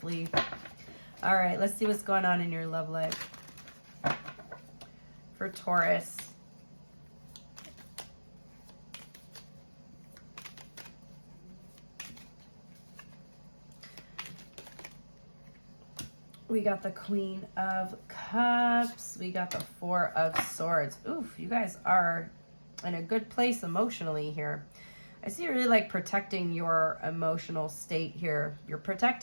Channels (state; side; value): inverted; both; correlation -1.00